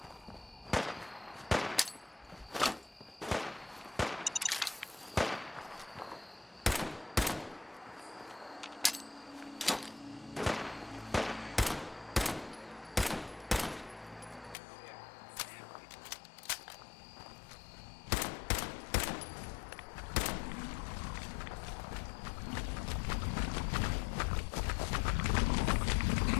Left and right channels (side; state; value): right; drops out; at 14.6 s